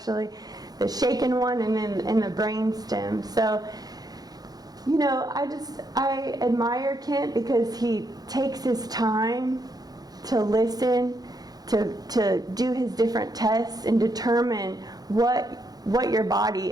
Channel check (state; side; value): late; left; 0.19 ms